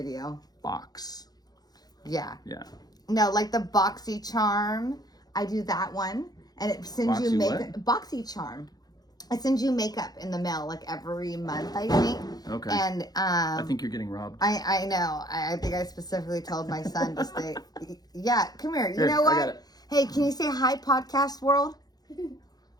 Box. Yeah. Yeah. No, like the Boxy Charm. I do that one. And it sends you makeup. Boxy Charm. It sends you makeup in the mail like every month, I think. Okay. And I think you're getting robbed. I know. I think I specifically told my son to stay. Yeah, come here. You know what? I got it. Hey, can you say hi, podcast world?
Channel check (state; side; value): late; right; 0.19 ms